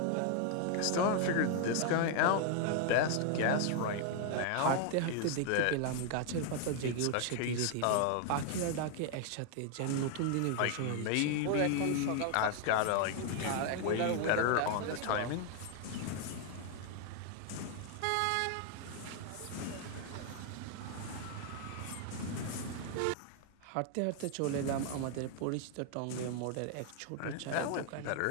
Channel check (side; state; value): both; different; correlation 0.00